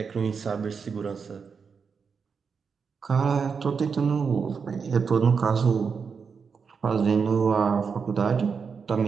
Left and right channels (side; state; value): left; quieter; 5.8 dB